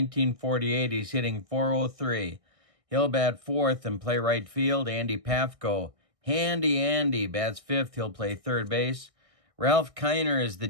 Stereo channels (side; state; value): left; late; 1.6 ms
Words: he's hitting 403. He'll bat fourth and play right field. Andy Pafko. Handy Andy bats fifth. He'll play third base. Ralph Kiner is the